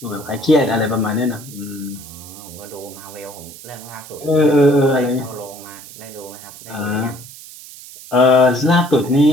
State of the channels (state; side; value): noise; right; hiss, 17 dB below the sound